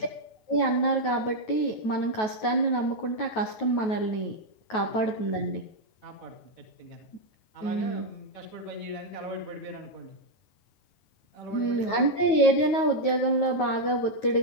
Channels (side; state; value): right; late; 9.2 ms